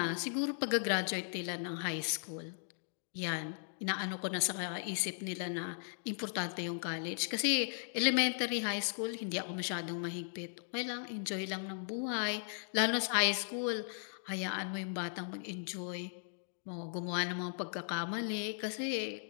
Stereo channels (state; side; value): silent; right; digital silence